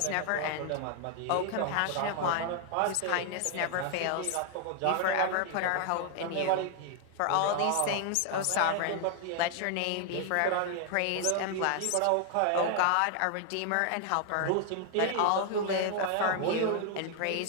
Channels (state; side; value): different; both; correlation 0.00